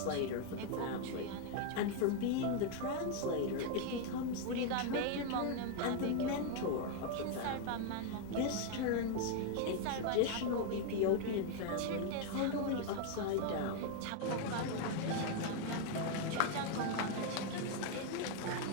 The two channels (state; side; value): different; both; correlation 0.00